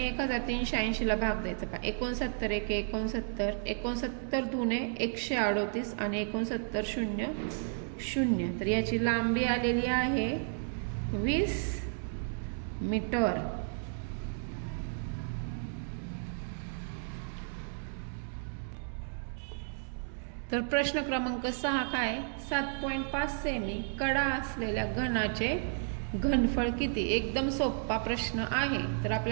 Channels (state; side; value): silent; left; digital silence